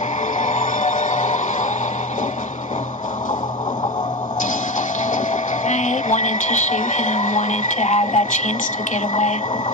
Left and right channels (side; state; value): both; normal; correlation 0.24